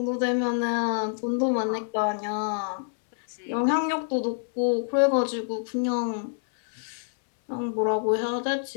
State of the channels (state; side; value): silent; right; 60 dB below the other